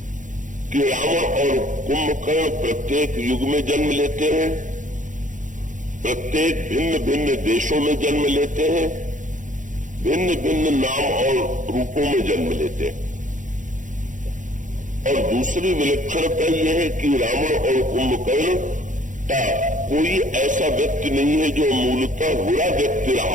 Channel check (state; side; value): late; left; 0.37 ms